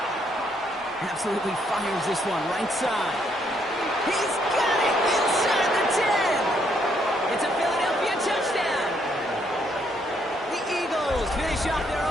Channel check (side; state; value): both; normal; correlation 0.72